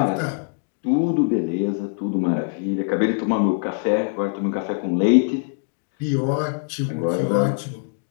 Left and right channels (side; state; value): right; silent; digital silence